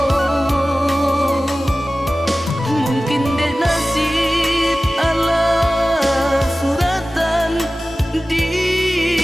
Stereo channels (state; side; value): normal; both; correlation 0.96